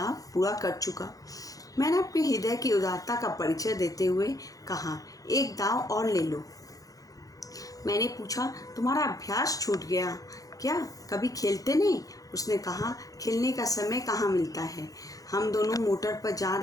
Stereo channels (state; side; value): late; right; 0.17 ms